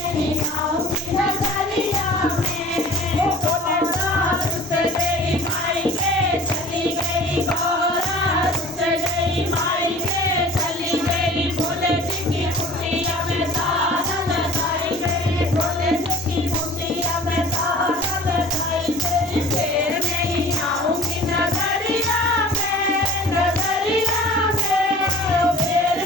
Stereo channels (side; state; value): both; normal; correlation 0.44